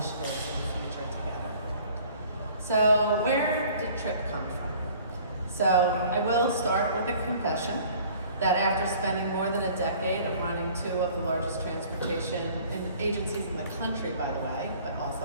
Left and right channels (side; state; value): both; inverted; correlation -0.51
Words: in the future together. So where did TRIP come from? So I will start with a confession that after spending more than a decade of running two of the largest transportation agencies in the country, by the way, but